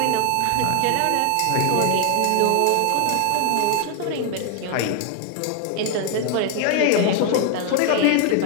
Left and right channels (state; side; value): different; both; correlation 0.00